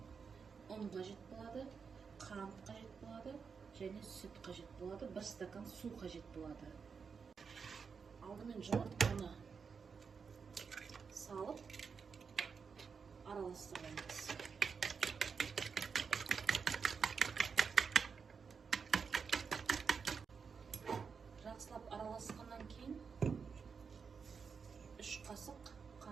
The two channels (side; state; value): left; quieter; 5.8 dB